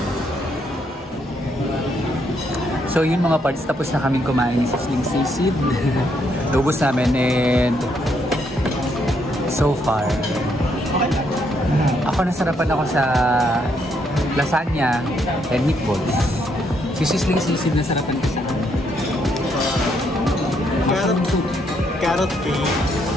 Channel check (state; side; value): normal; both; correlation 0.74